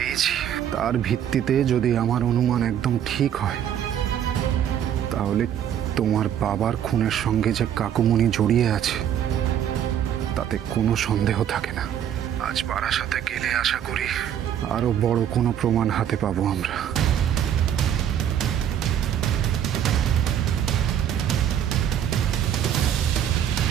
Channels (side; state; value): left; quieter; 9.8 dB